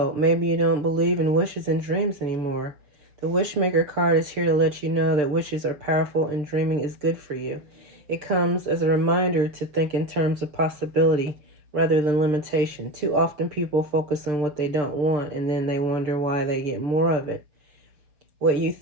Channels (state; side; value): late; left; 6.7 ms